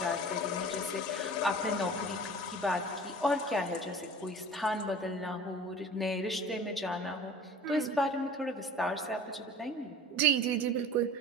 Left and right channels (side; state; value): both; normal; correlation 0.41